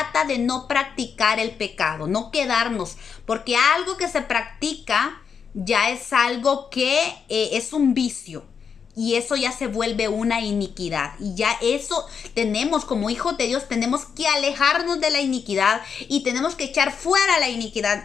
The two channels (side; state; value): right; quieter; 6.5 dB